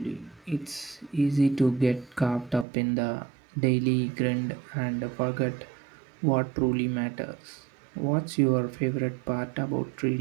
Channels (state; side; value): drops out; left; at 2.7 s